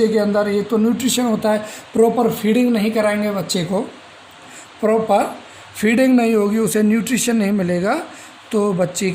के अंदर ये तो न्यूट्रिशन होता है, प्रॉपर फीडिंग नहीं कराएंगे बच्चे को, प्रॉपर फीडिंग नहीं होगी, उसे न्यूट्रिशन नहीं मिलेगा तो बच्चे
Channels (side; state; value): both; identical; correlation 1.00